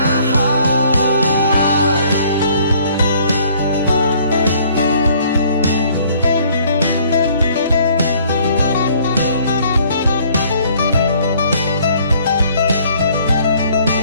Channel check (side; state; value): both; inverted; correlation -0.59